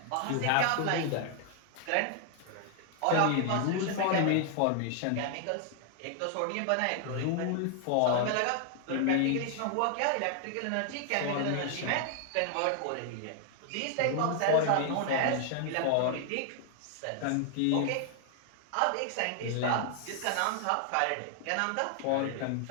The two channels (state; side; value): different; both; correlation 0.00